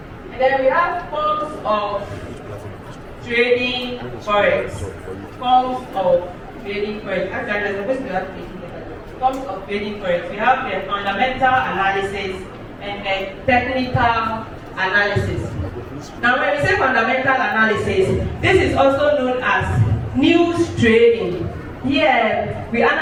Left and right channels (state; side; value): identical; both; correlation 1.00